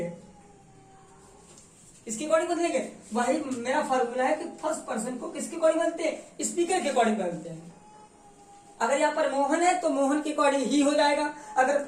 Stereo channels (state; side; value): identical; both; correlation 1.00